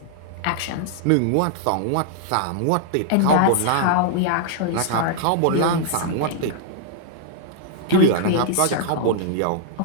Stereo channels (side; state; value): both; different; correlation -0.01